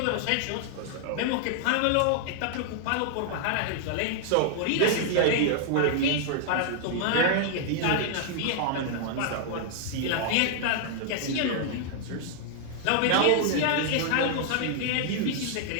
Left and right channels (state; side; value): different; both; correlation 0.00